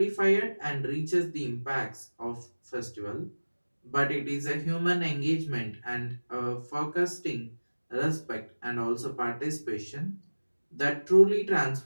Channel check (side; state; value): both; inverted; correlation -1.00